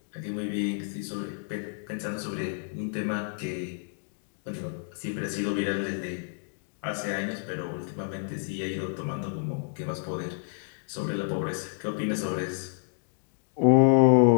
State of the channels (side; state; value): right; silent; digital silence